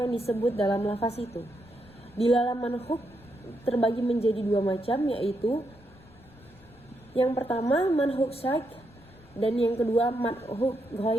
yang disebut dalam lafaz itu. Dilalah manhuk terbagi menjadi dua macam, yaitu yang pertama manhuk syaik dan yang kedua manhuk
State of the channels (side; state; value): left; noise; rumble, 24 dB below the sound